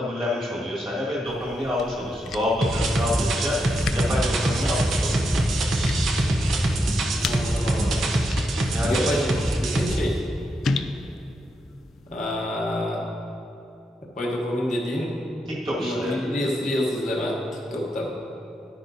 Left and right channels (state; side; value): normal; both; correlation 0.83